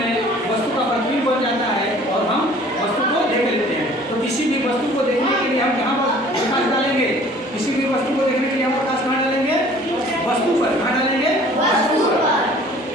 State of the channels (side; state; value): both; normal; correlation 0.51